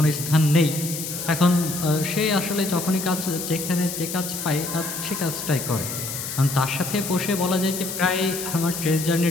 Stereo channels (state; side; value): noise; left; hiss, 6 dB below the sound